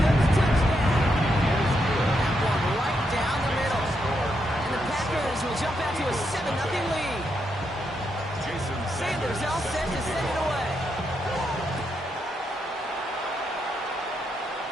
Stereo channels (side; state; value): both; normal; correlation 0.81